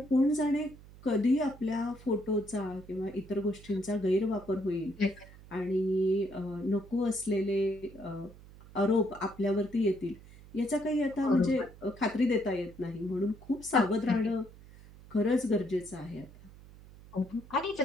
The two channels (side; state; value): right; noise; hum, 20 dB below the sound